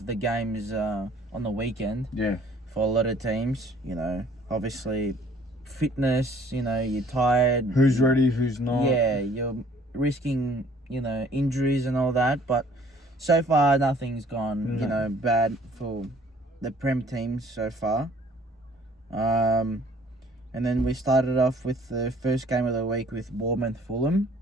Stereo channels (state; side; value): normal; both; correlation 0.57